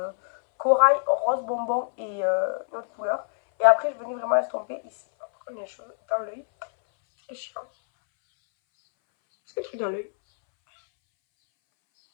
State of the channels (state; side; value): silent; right; 62 dB below the other